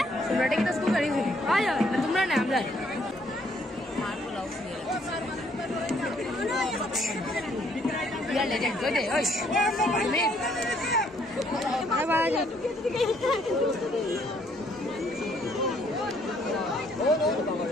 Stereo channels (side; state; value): both; normal; correlation 0.66